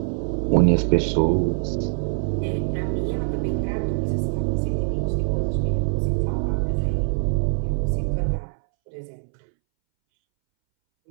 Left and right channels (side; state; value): left; silent; 63 dB below the other